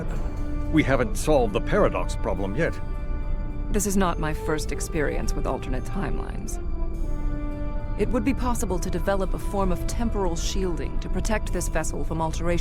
We haven't solved the paradox problem yet. This is not my first experience with alternate timelines. It would be possible to develop a form of temporal shielding to protect this vessel from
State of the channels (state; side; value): identical; both; correlation 1.00